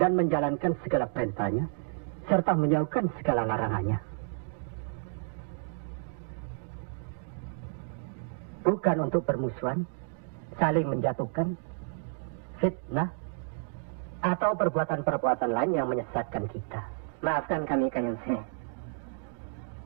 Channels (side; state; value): left; silent; digital silence